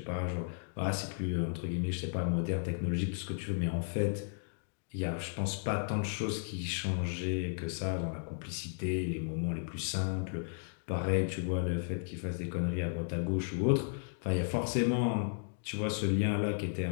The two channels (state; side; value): silent; right; digital silence